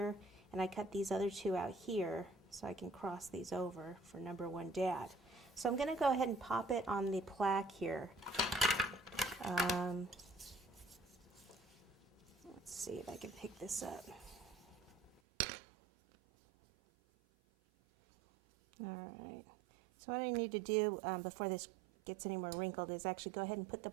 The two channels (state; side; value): drops out; left; at 15.2 s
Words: and I cut these other 2 out here so I can cross these over for number 1 dad. So I'm going to go ahead and pop it on the plaque here. Let's see if I can pick this up. Alright, so what I need to do before this gets any more wrinkled is actually go ahead and put the